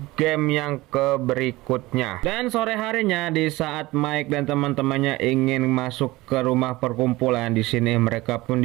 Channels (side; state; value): left; quieter; 19.8 dB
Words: game yang berikutnya. Dan sore harinya di saat Mike dan teman-temannya ingin masuk ke rumah perkumpulan, di sini mereka pun